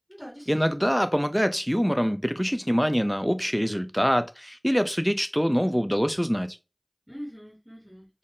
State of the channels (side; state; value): both; identical; correlation 1.00